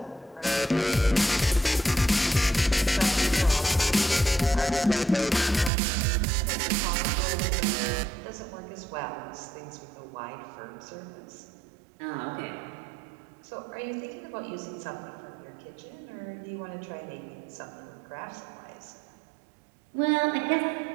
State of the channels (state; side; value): drops out; left; at 5.7 s